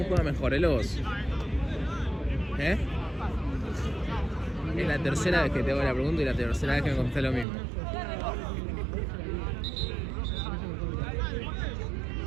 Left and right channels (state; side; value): drops out; left; at 7.5 s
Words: juega mejor, él o vos? ¿Eh? Es la tercera vez que te hago la pregunta y la tercera vez que me contestas lo mismo.